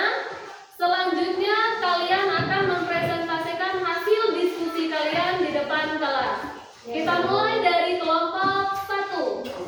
Selanjutnya kalian akan mempresentasikan hasil diskusi kalian di depan kelas. Kita mulai dari kelompok 1.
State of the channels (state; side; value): identical; both; correlation 1.00